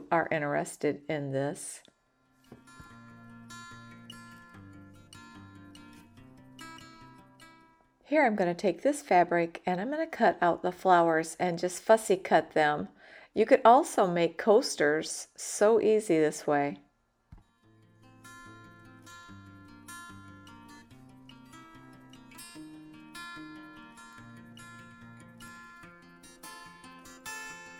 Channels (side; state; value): both; identical; correlation 1.00